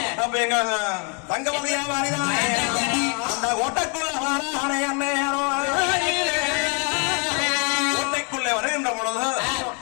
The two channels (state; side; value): quieter; right; 36.0 dB